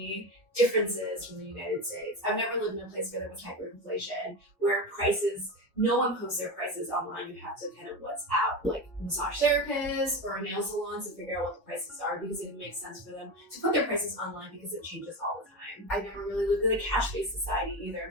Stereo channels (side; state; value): both; normal; correlation 0.20